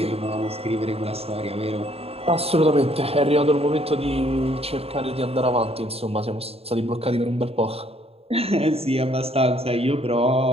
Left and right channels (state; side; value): late; left; 0.29 ms